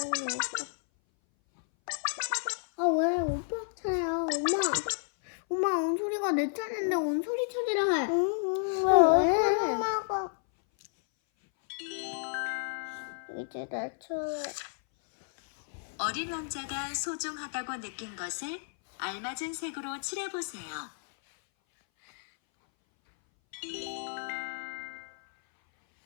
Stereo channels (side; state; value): right; silent; 57 dB below the other